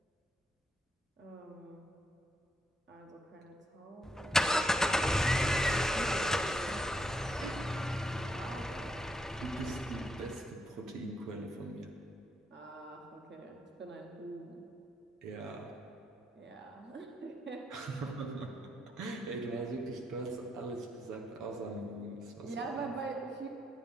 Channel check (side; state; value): both; normal; correlation 0.78